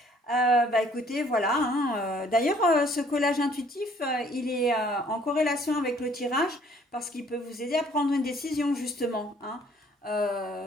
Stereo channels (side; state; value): both; normal; correlation 0.60